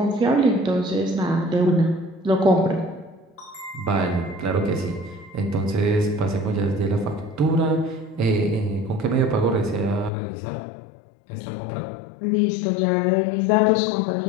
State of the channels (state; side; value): drops out; right; at 10.1 s